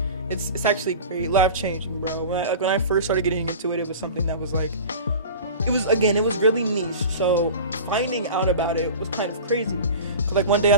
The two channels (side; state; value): both; inverted; correlation -0.35